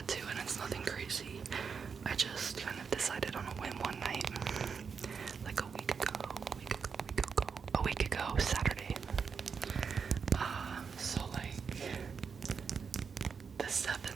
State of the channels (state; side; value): quieter; left; 6.0 dB